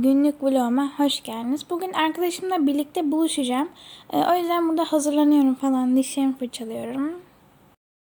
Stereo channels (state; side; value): identical; both; correlation 1.00